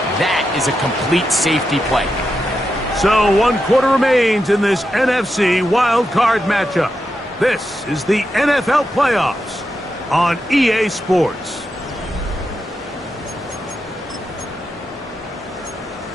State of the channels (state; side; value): normal; both; correlation 0.87